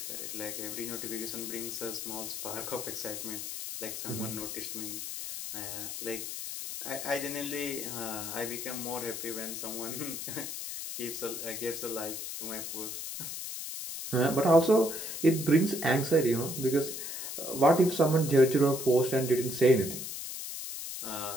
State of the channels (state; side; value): noise; left; hiss, 6 dB below the sound